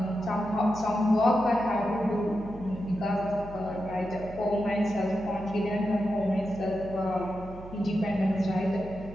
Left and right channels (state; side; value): noise; right; hum, 15 dB below the sound